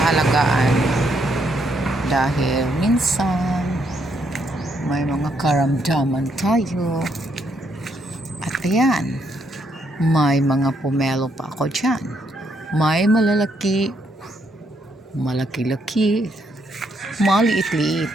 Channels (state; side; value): normal; both; correlation 0.74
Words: dahil minsan may mga karamdaman tayo. At ayan, may mga pomelo pa ako dyan. May malalaki, malaki-laki, maliit-liit.